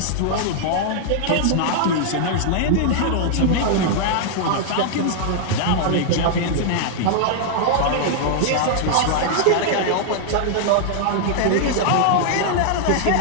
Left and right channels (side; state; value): both; different; correlation -0.01